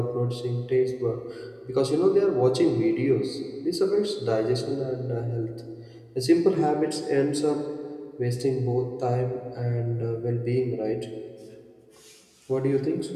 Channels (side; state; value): both; identical; correlation 1.00